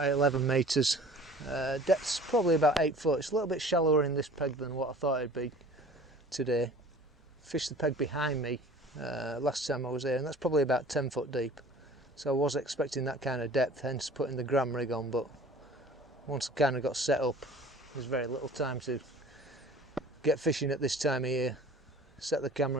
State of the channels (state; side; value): normal; both; correlation 0.46